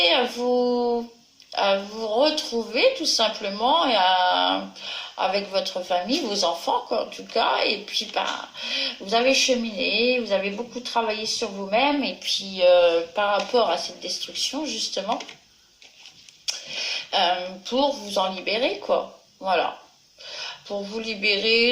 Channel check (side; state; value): both; identical; correlation 1.00